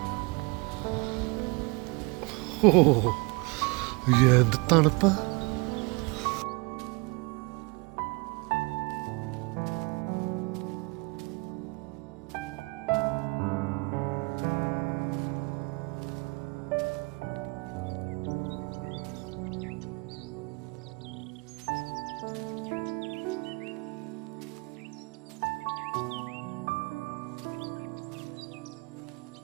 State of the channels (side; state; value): left; quieter; 27.5 dB